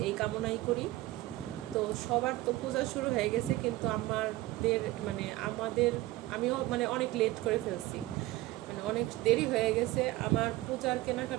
এই কামনাই করি। তো সবার তো পূজা শুরু হয়ে গেছে, কিন্তু আমিও অনেক লেট করে ফেলছি, অনেক দেরি হয়ে গেছে। আমার পূজার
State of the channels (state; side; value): quieter; left; 17.6 dB